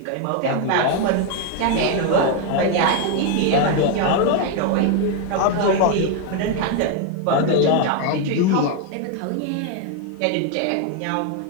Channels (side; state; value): both; different; correlation 0.01